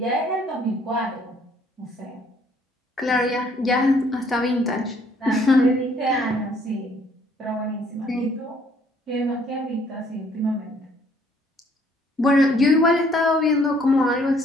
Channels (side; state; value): both; normal; correlation 0.63